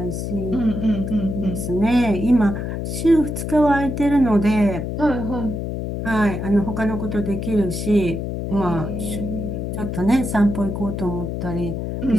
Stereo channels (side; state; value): left; noise; hum, 4 dB below the sound